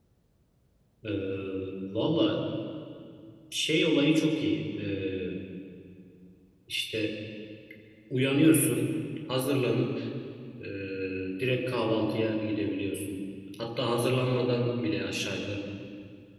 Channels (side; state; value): both; identical; correlation 1.00